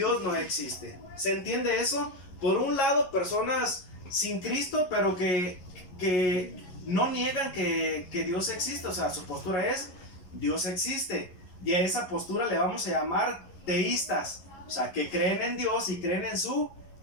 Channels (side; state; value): right; late; 11 ms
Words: existe. ¿Se entiende eso? Por un lado, personas sin Cristo, pero que no niegan que Dios existe. O sea, su postura es, Dios existe. Y a esa postura le vamos a llamar teístas. O sea, que creen en Dios y creen en su